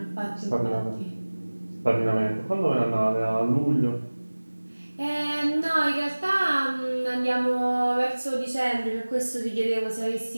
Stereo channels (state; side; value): inverted; both; correlation -1.00